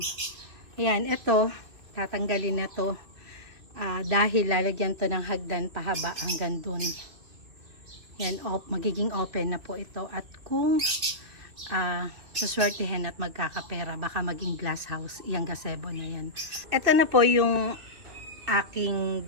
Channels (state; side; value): late; left; 2.3 ms